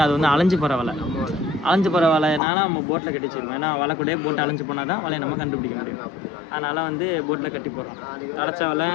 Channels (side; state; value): right; drops out; at 2.4 s